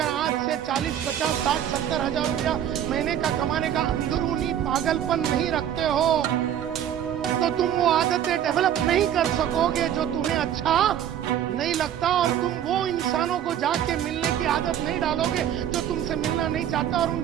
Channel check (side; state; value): left; quieter; 10.3 dB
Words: आज से 40, 50, 60, 70 हजार रुपया महीने का कमाने का अंदरूनी पागलपन नहीं रखते हो तो तुम वो आदतें डेवलप नहीं कर सकोगे जो तुम्हें अच्छा नहीं लगता, और तुम वो इंसानों को जाके मिलने की आदत नहीं डालोगे जो तुमसे मिलना नहीं चाहता, और